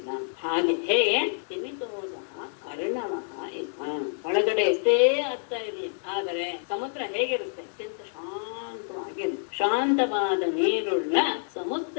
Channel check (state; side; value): silent; right; digital silence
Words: ಹಾಗೆ ಹೇಗೆ ತಿಮಿತೋದ ಅರ್ಣವಃ ಇವ. ಒಳಗಡೆ ಎಷ್ಟೇ ಅರ್ಥ ಇರಲಿ, ಆದರೆ ಸಮುದ್ರ ಹೇಗಿರುತ್ತೆ? ಅತ್ಯಂತ ಶಾಂತವಾಗಿರುತ್ತೆ. ಶಾಂತವಾದ ನೀರುಳ್ಳ